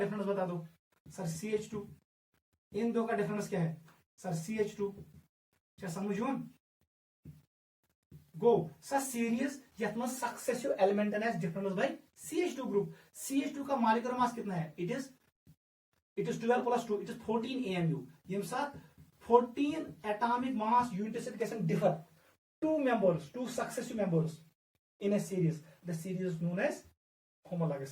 बता दो सर। CH2 इन दो का डिफरेंस क्या है सर? CH2। क्या समझो गो सर सीरीज यथ मज successive element difference bye CH2 group. CH2 का मॉलिक्यूलर मास कितना है? It is 12 + 2 it is 14 AMU। ये साथ 14 एटॉमिक मास यूनिट कैसे differ two members, two successive members in a series. The series is known as homologous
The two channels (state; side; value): identical; both; correlation 1.00